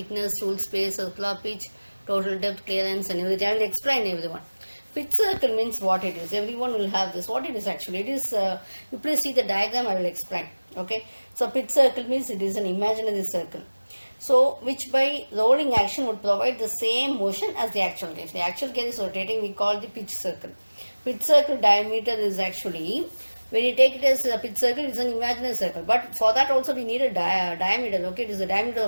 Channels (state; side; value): inverted; both; correlation -1.00